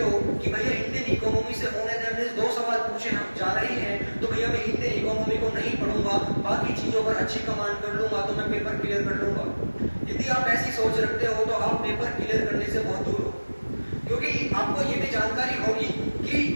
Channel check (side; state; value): both; inverted; correlation -1.00